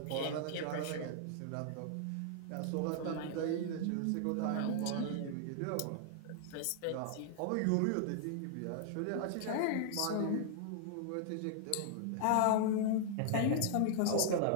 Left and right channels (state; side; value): different; both; correlation -0.01